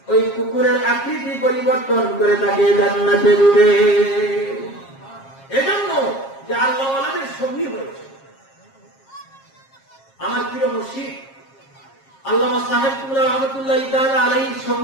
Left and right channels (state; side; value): late; right; 7.4 ms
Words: ওই কুকুরের আকৃতি পরিবর্তন করে তাকে জান্নাতে দিবে। এজন্য যে আল্লাহওয়ালাদের সঙ্গী হয়েছে। আমার প্রিয় মুর্শিদ আল্লামা সাহেব কুবরা রহমতুল্লাহি তাআলা আলাইহি